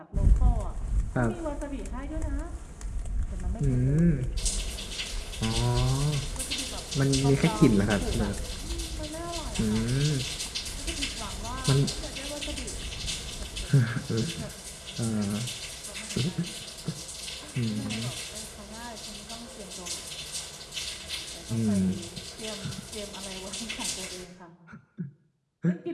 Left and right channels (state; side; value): identical; both; correlation 1.00